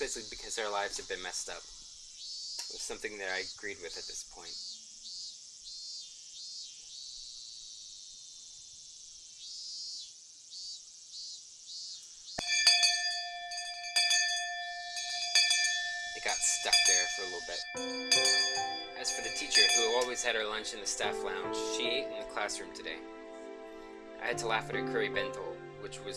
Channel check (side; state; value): both; identical; correlation 1.00